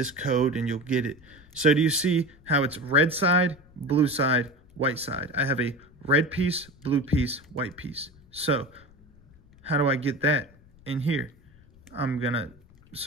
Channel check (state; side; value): noise; left; rumble, 26 dB below the sound